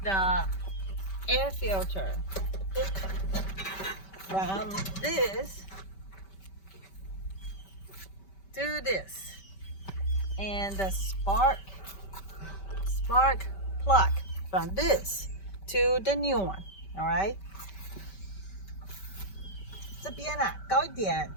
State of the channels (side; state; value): right; late; 5.2 ms